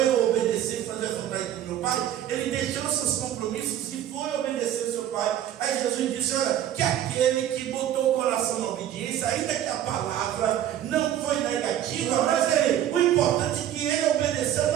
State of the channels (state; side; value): quieter; left; 11.3 dB